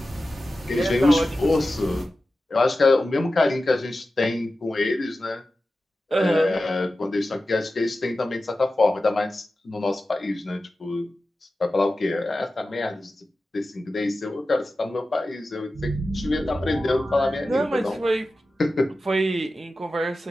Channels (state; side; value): normal; both; correlation 0.94